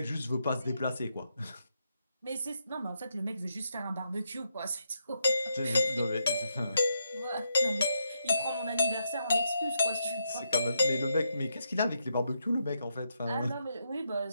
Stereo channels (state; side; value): inverted; both; correlation -0.80